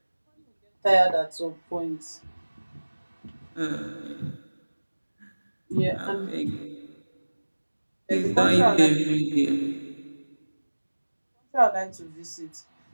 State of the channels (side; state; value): both; inverted; correlation -1.00